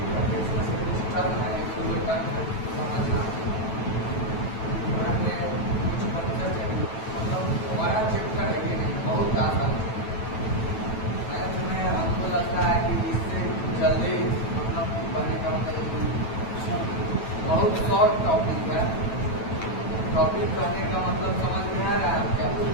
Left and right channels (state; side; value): late; right; 9.1 ms